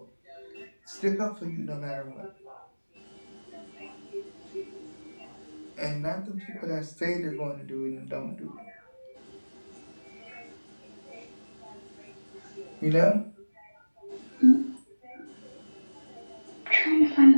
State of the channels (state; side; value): inverted; both; correlation -1.00